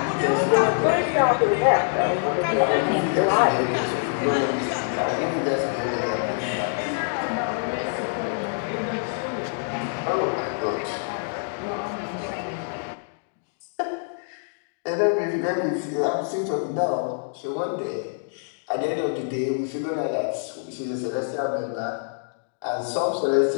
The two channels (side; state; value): right; silent; digital silence